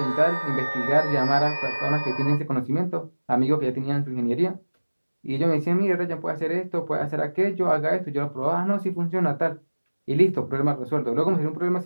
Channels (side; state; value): both; inverted; correlation -1.00